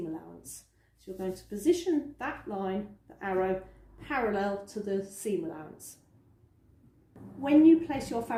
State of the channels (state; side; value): identical; both; correlation 1.00